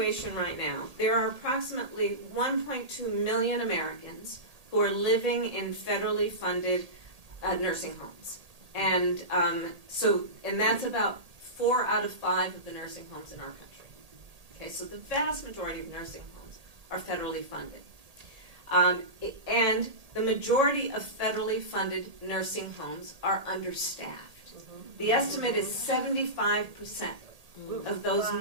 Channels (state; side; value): late; left; 1.8 ms